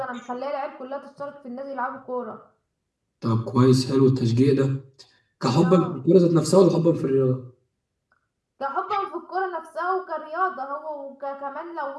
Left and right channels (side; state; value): both; identical; correlation 1.00